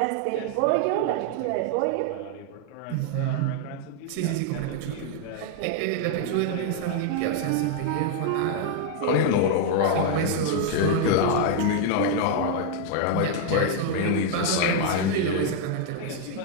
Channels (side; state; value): both; different; correlation 0.00